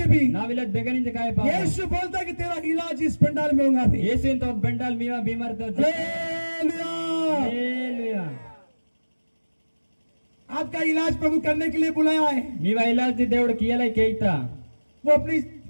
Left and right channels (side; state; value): both; inverted; correlation -1.00